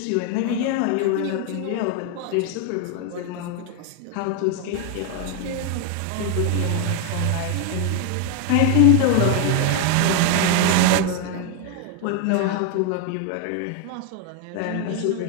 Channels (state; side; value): different; both; correlation 0.01